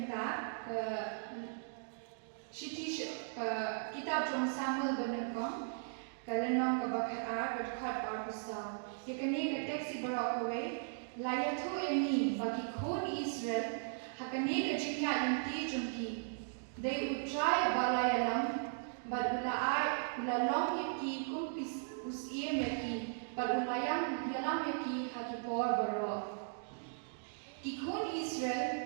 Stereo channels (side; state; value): left; silent; digital silence